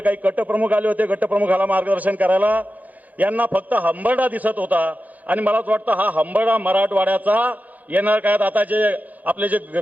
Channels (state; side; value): late; left; 0.079 ms